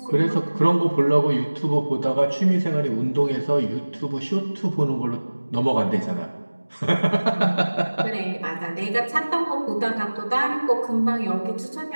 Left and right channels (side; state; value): both; inverted; correlation -1.00